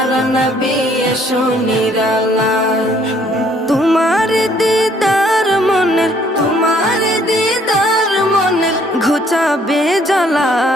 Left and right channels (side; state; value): both; normal; correlation 0.63